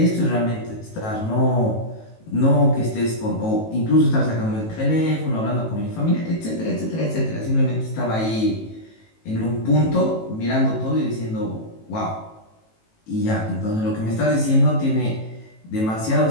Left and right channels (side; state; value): right; late; 18 ms